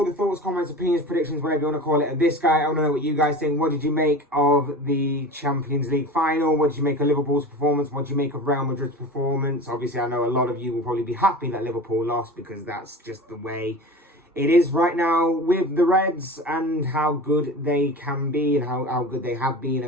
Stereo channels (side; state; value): both; normal; correlation 0.34